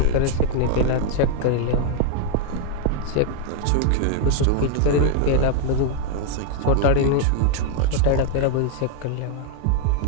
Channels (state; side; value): different; both; correlation 0.00